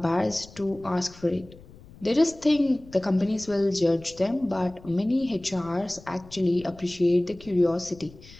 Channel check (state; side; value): noise; left; rumble, 21 dB below the sound